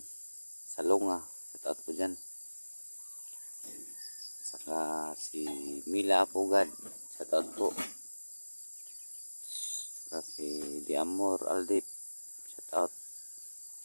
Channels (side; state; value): both; inverted; correlation -1.00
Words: Salonga. Shout out po dyan. At saka si Mila Apugad. Shout out po. At saka si Diamor Aldip. Shout out.